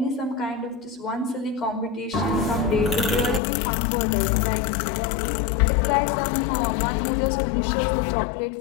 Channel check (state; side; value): drops out; right; at 3.4 s